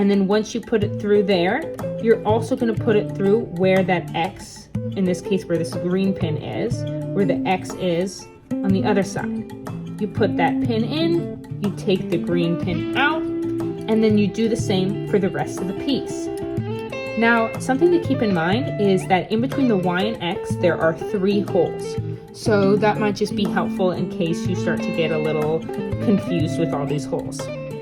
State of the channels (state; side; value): identical; both; correlation 1.00